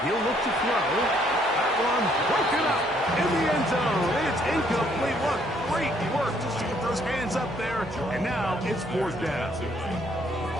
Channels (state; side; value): noise; right; hum, 22 dB below the sound